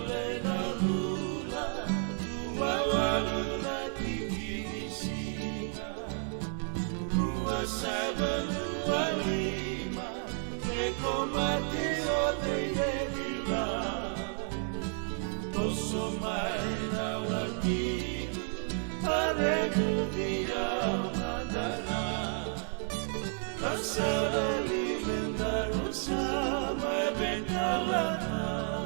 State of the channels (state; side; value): silent; left; 55 dB below the other